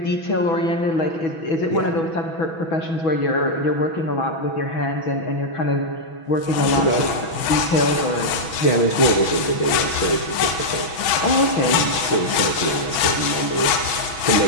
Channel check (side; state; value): right; late; 6.1 ms